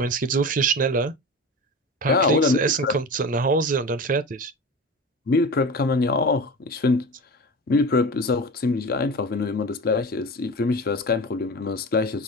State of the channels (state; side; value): normal; both; correlation 0.30